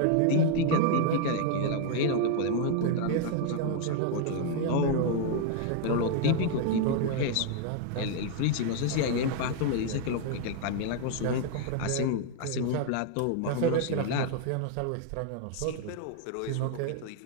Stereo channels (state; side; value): different; both; correlation 0.00